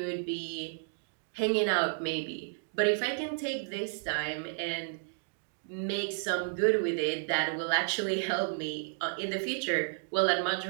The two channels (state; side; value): silent; left; digital silence